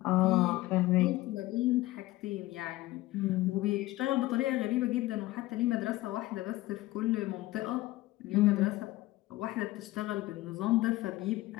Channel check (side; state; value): right; quieter; 17.9 dB